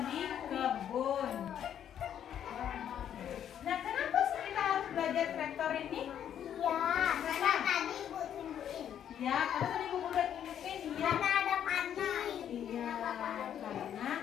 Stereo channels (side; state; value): right; quieter; 9.6 dB